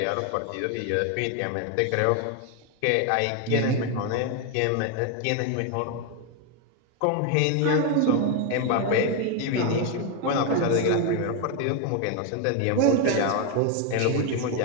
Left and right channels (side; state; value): both; different; correlation 0.02